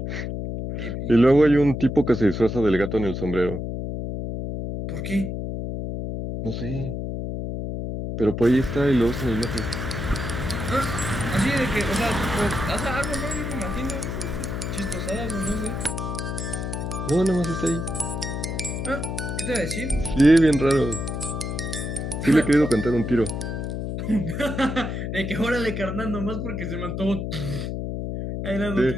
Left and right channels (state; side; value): noise; left; hum, 4 dB below the sound